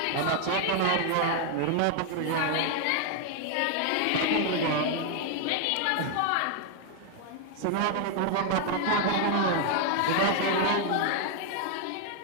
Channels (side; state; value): both; different; correlation 0.00